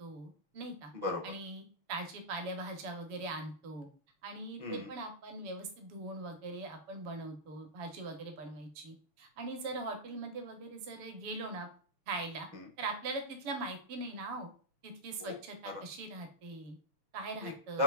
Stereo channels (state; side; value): late; left; 6.9 ms